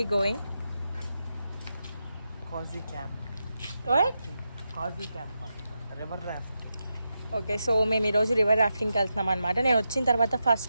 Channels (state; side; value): inverted; both; correlation -0.88